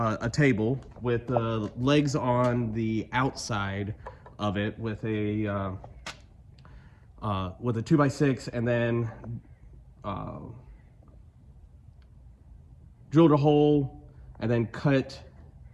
table with legs on the outside of it with a 2x6, and then drilled a hole and then cut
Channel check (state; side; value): identical; both; correlation 1.00